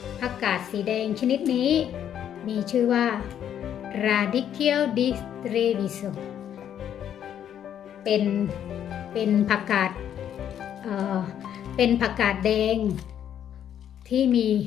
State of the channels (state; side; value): quieter; right; 9.8 dB